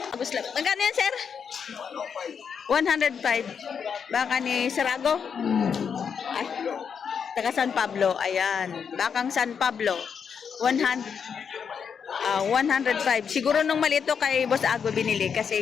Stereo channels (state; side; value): quieter; right; 6.8 dB